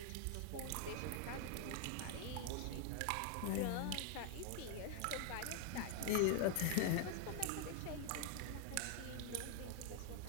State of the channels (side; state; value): both; different; correlation 0.00